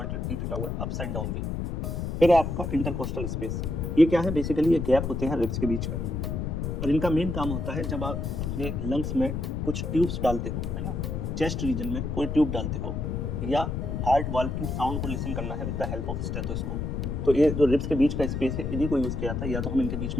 वी बना हुआ है, अपसाइड डाउन वी। फिर आपका इंटरकोस्टल स्पेस, ये क्या है? बेसिकली ये गैप होते हैं रिब्स के बीच में, और इनका मेन काम होता है जब आप अपने लंग्स में कुछ ट्यूब्स डालते हो, है ना, चेस्ट रीजन में कोई ट्यूब डालते हो, या हार्ट वाल्व की साउंड को लिसन करना है with the help of stethoscope, तो ये जो रिब्स के बीच का स्पेस है इन्हीं को यूज किया जाता है। या तो हम इनके बीच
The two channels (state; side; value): noise; left; rumble, 2 dB below the sound